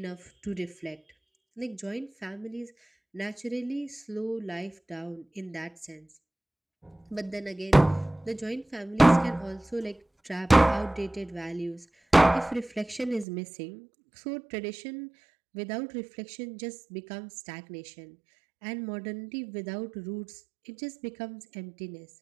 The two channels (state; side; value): drops out; left; at 13.2 s